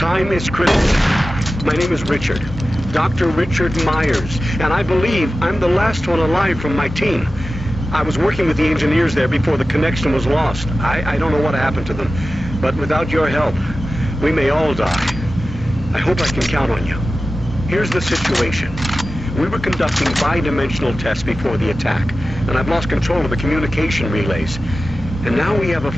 is critical. My name is Richard. Dr. Richard Myers, and I believe I'm the last one alive from my team. I was working with the engineers there before the connection was lost. I don't know what happened to them, but without your help, we may all die. I hope I can count on you. Here's the situation. We were conducting bi-dimensional tests before the attack, and I've lost control of the communication relays. And now we have a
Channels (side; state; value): both; normal; correlation 0.94